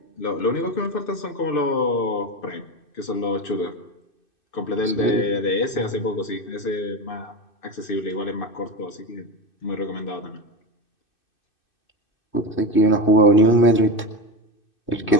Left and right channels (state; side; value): late; right; 2.6 ms